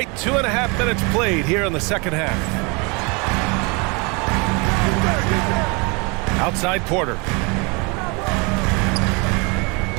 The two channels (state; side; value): quieter; left; 30.0 dB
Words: 2.5 minutes played here in the second half. Outside Porter.